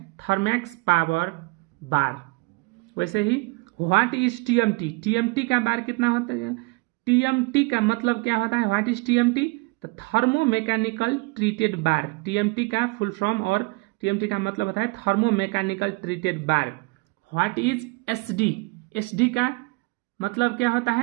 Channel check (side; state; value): left; quieter; 27.7 dB